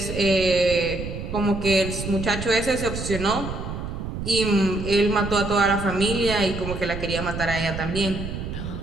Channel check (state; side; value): noise; right; rumble, 6 dB below the sound